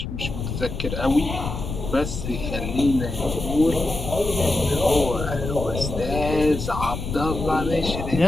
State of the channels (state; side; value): noise; left; rumble, 6 dB below the sound